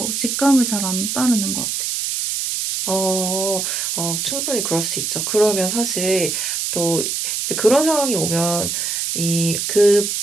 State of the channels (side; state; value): right; noise; hiss, 1 dB below the sound